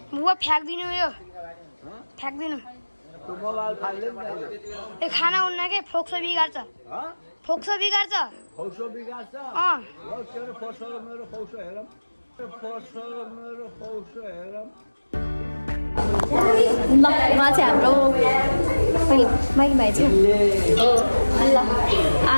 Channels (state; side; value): inverted; both; correlation -1.00